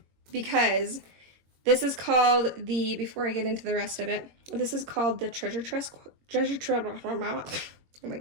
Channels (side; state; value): left; late; 21 ms